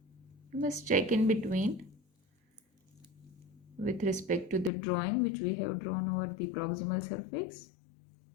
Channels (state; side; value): drops out; right; at 4.7 s